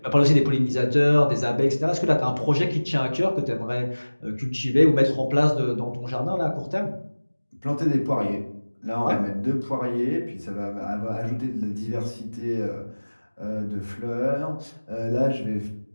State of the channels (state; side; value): inverted; both; correlation -1.00